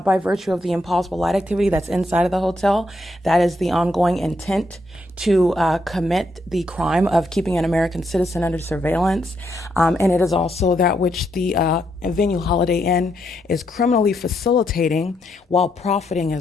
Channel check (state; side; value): normal; both; correlation 0.78